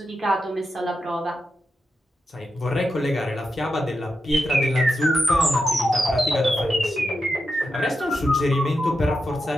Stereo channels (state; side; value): normal; both; correlation 0.87